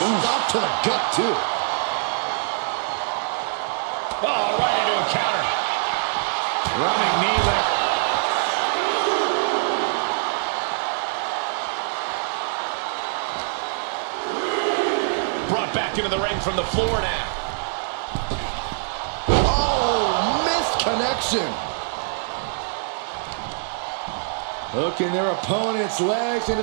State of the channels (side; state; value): left; silent; 57 dB below the other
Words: to the gut too. Oh, right into a counter. Running knee lift. Brought back into the ring from the floor now. Oh, missed connection. Hooking their opponent's legs into